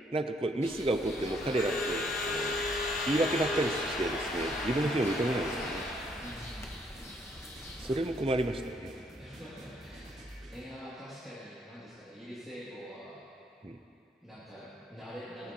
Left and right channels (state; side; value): normal; both; correlation 0.69